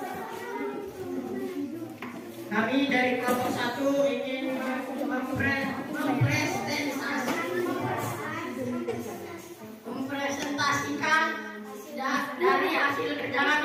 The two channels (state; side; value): identical; both; correlation 1.00